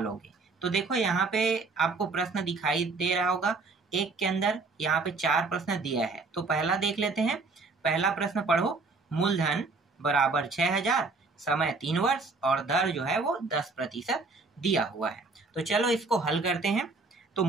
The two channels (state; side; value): quieter; left; 3.9 dB